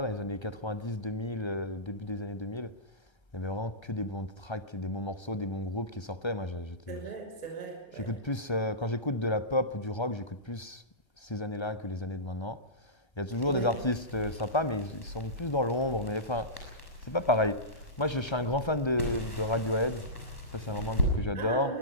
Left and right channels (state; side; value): late; right; 1.3 ms